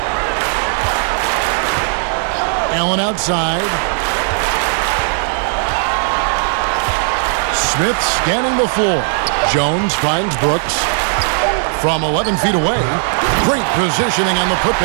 Allen outside. Smith scanning the floor. Jones finds Brooks. From 11 feet away, great positioning on the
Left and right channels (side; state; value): left; silent; 60 dB below the other